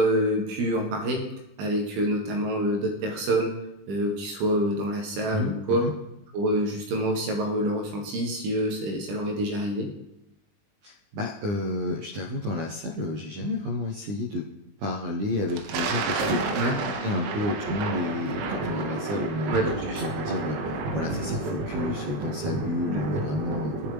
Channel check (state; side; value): late; left; 20 ms